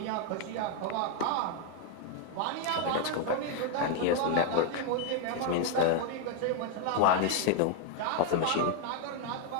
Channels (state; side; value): different; both; correlation 0.01